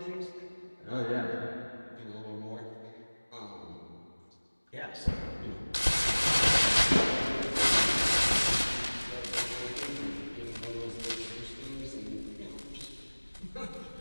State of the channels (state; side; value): inverted; both; correlation -1.00